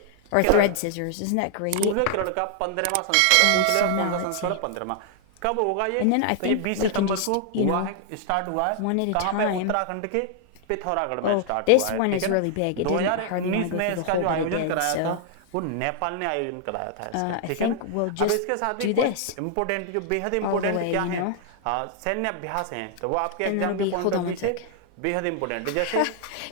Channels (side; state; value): both; different; correlation 0.00